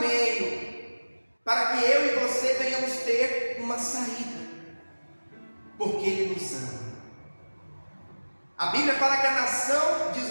para que eu e você venhamos ter uma saída, porque Ele nos ama. A Bíblia fala que a nação de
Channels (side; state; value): both; inverted; correlation -1.00